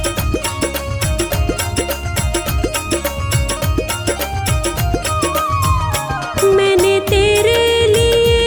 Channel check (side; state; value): both; identical; correlation 1.00